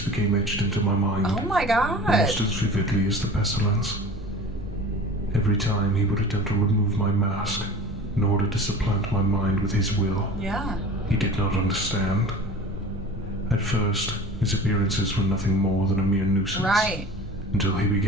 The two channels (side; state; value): both; normal; correlation 0.39